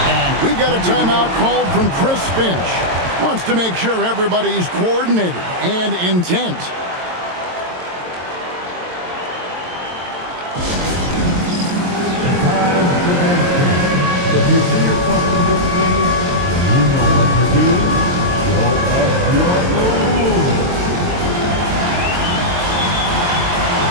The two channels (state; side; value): late; left; 22 ms